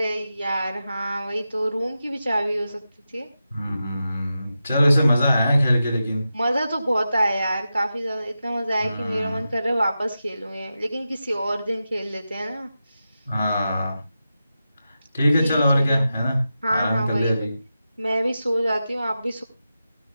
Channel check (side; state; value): both; inverted; correlation -0.91